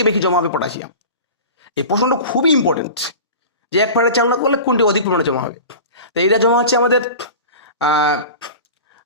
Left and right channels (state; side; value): inverted; both; correlation -0.34